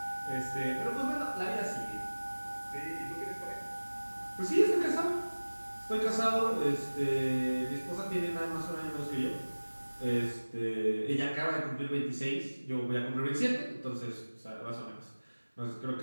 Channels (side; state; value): both; inverted; correlation -1.00